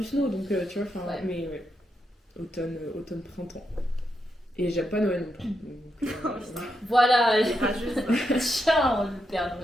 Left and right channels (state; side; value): normal; both; correlation 0.83